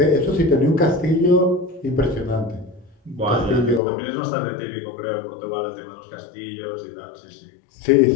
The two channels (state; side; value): drops out; right; at 3.8 s